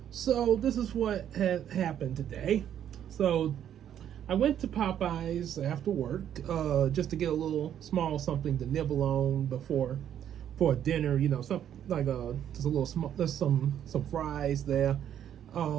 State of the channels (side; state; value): left; quieter; 10.0 dB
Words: so this is what had happened today. So I went to Popeyes after work, just to get a little small something to nibble on for dinner. Something like just a little small, there's some fries there.